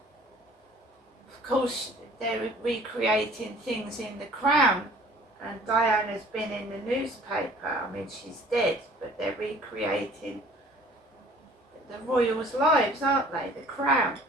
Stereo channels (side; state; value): both; normal; correlation 0.52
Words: Of course, they're recreating things in The Crown, and Diana's been in the newspaper. I mean, she's dead, but they're recreating the royals' lives, aren't they? The Crown